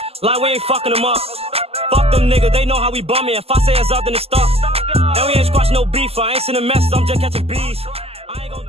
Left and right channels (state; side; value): late; left; 0.29 ms